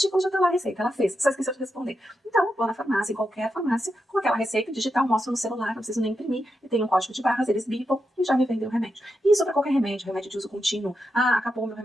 já tá lá a receita. Ela fez, só esqueceu de responder. Então, vou na farmácia, em qualquer farmácia, com aquela receita digital, mostro no celular, não preciso nem imprimir, e tem um código de barras, eles bipam e já me vendem o remédio. Isso para qualquer remédio de uso contínuo. Acabou meu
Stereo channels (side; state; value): both; normal; correlation 0.86